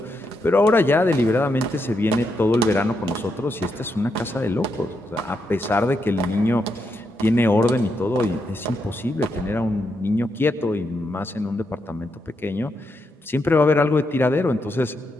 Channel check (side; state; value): both; normal; correlation 0.82